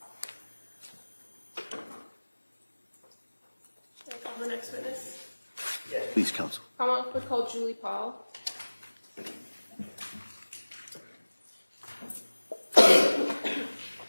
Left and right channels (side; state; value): both; inverted; correlation -1.00